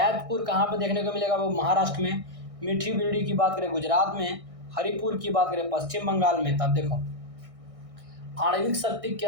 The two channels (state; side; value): late; left; 1.6 ms